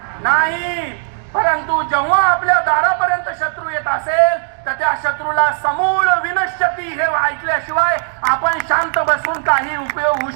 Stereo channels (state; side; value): silent; left; digital silence